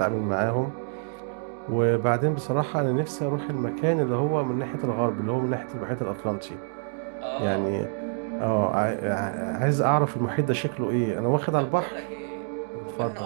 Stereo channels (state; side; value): silent; left; 60 dB below the other